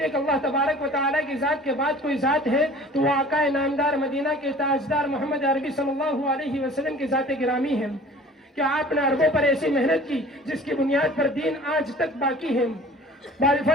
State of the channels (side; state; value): both; normal; correlation 0.46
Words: کہ اللہ تبارک و تعالیٰ کی ذات کے بعد کوئی ذات ہے تو وہ آقا نامدار مدینہ کے تاجدار محمد عربی صلی اللہ علیہ وسلم کی ذات گرامی ہے. کہ آپ نے عربوں پر ایسی محنت کی جس کی بنیاد پر دین آج تک باقی ہے.